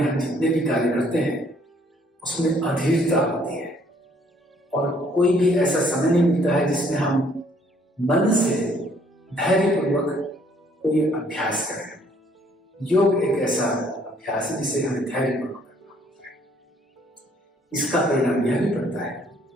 हम जितने भी कार्य करते हैं उसमें अधीरता होती है और कोई भी ऐसा समय नहीं मिलता है जिसमें हम मन से धैर्यपूर्वक कोई अभ्यास करें। योग एक ऐसा अभ्यास है जिसे हमें धैर्यपूर्वक करना होता है। इसका परिणाम यह भी पड़ता है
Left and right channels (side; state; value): both; normal; correlation 0.63